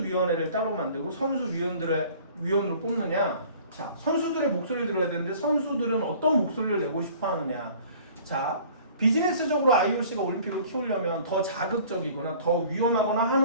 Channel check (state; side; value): inverted; both; correlation -0.50